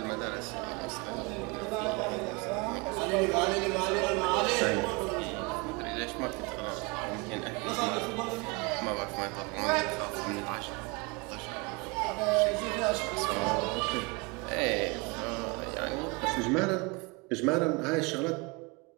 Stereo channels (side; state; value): left; quieter; 28.1 dB